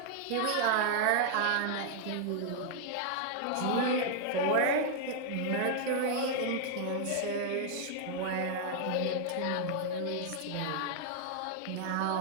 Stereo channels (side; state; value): both; different; correlation 0.00